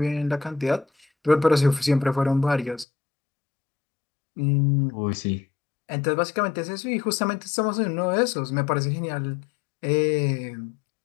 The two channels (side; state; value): right; drops out; at 2.9 s